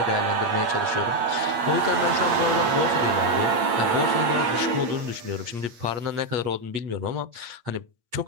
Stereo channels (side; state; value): left; late; 8.5 ms